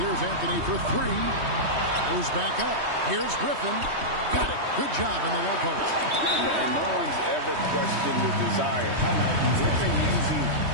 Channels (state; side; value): late; left; 3.2 ms